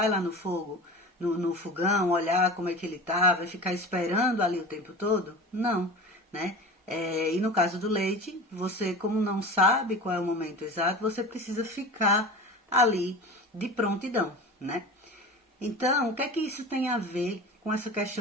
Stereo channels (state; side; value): normal; both; correlation 0.34